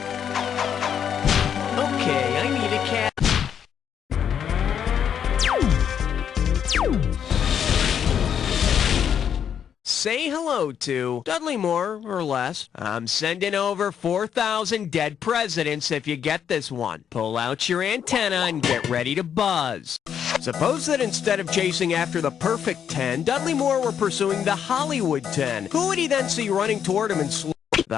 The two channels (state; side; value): quieter; right; 8.4 dB